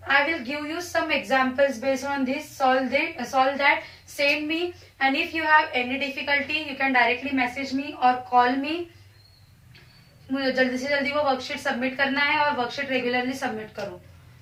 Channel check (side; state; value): both; identical; correlation 1.00